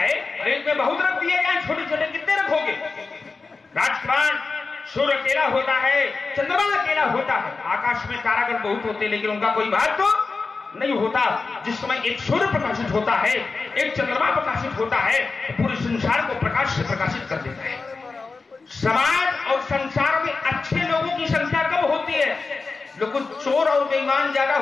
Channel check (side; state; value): right; quieter; 4.2 dB